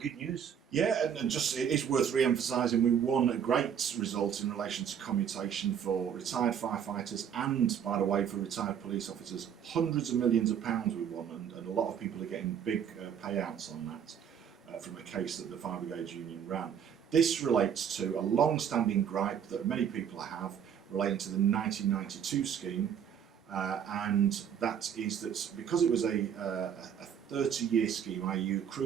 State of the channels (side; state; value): left; quieter; 8.3 dB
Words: news? Yeah, and just it is worth re-emphasising, we won a great result in relation to commutation for retired firefighters and, by the way, for retired police officers. Hundreds of millions of pounds we won, and a lot of people are getting big payouts on that from a case that the Fire Brigade Union ran. This relates to a long-standing gripe that many people have relating to the 1992 scheme, and that is that because it was a 30-year scheme, i.e. you